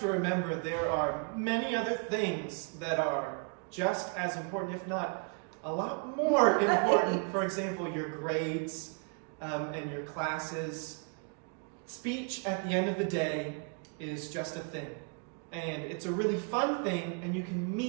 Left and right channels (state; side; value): quieter; left; 38.4 dB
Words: remember there are many other things that are just as important, if not a lot more important. For example, your grades and your classes. Speech, at the end of the day, is just a thing. And it's a really fun thing, and you can